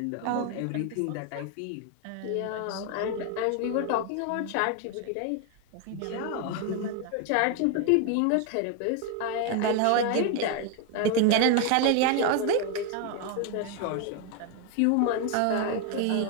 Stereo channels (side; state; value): both; different; correlation 0.01